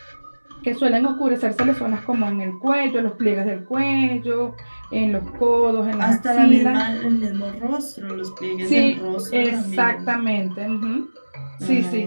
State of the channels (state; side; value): inverted; both; correlation -1.00